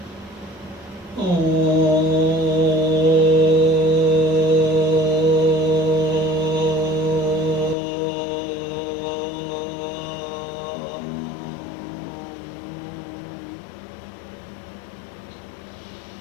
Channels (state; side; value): drops out; right; at 7.8 s